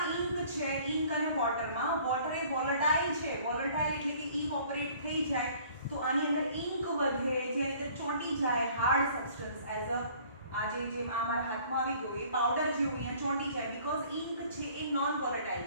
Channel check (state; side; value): inverted; both; correlation -0.54